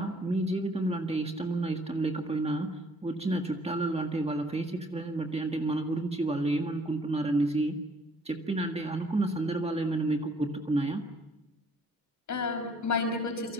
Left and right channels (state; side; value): normal; both; correlation 0.61